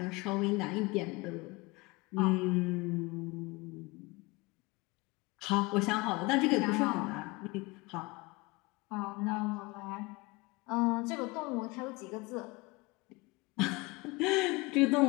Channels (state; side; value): quieter; right; 24.2 dB